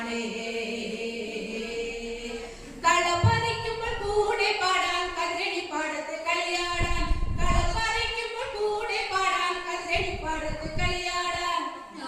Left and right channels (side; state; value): both; identical; correlation 1.00